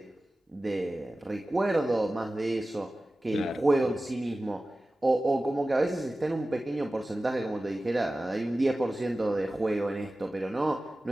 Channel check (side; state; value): both; normal; correlation 0.96